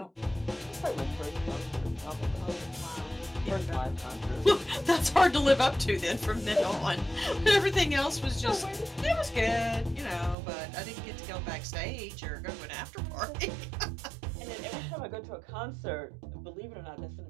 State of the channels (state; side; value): drops out; left; at 10.4 s